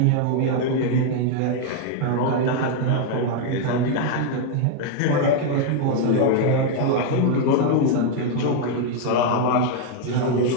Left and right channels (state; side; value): different; both; correlation 0.00